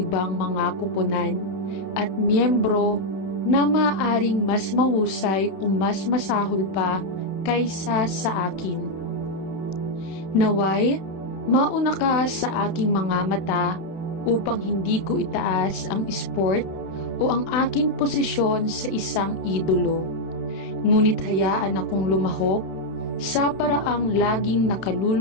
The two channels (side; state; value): right; late; 32 ms